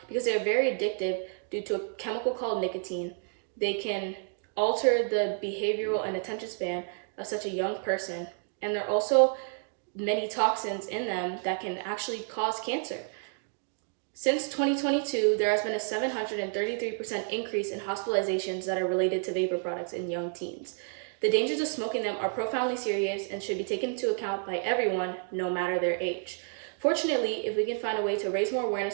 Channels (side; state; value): left; silent; 58 dB below the other